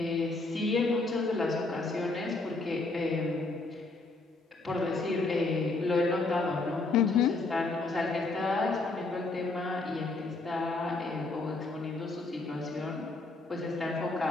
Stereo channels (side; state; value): right; quieter; 3.4 dB